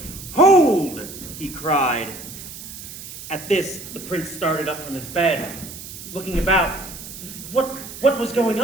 "Hold!" he cried. At this, the prince started up from his bed, looking about. What was going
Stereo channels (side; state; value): right; noise; hiss, 12 dB below the sound